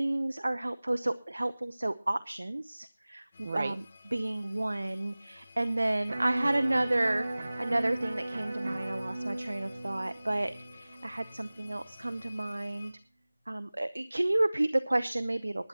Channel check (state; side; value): inverted; both; correlation -0.99